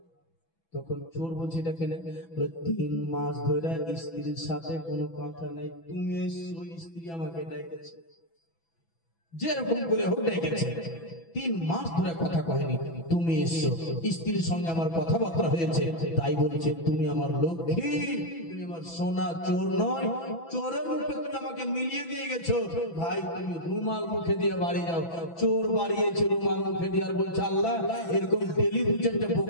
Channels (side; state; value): right; late; 6.0 ms